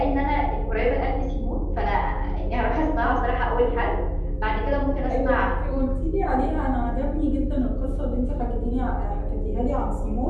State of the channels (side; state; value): both; identical; correlation 1.00